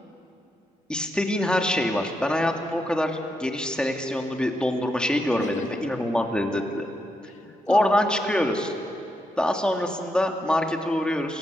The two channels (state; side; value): normal; both; correlation 0.82